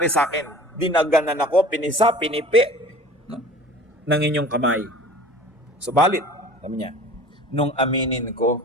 sa akin. Dinaganan ako, pinisa, pinipi, no? ng inyong kamay. Subalit, sabi niya, nung aminin ko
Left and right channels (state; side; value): normal; both; correlation 0.43